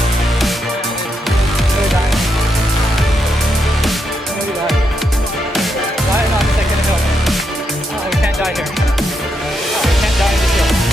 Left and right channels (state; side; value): normal; both; correlation 0.81